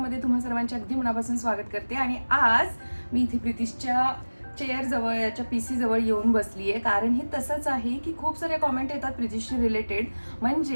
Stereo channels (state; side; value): inverted; both; correlation -1.00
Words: तुम्हा सर्वांचे अगदी मनापासून स्वागत करते. आणि आज मी इथे प्रितिशच्या चेअर जवळ याच्या PC जवळ येऊन बसली आहे. कारण हे तसंच आहे की खूप सारे कॉमेंट येतात प्रितिशशी रिलेटेड,